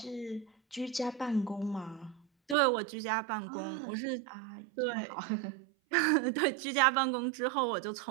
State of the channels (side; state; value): left; drops out; at 2.6 s